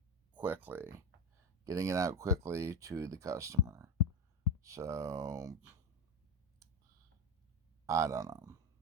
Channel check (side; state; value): both; normal; correlation 0.17